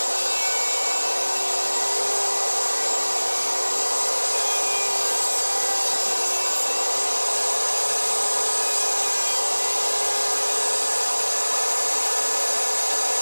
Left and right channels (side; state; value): both; inverted; correlation -1.00